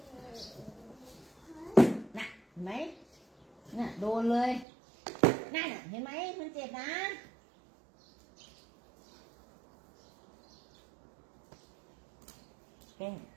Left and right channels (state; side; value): drops out; left; at 4.7 s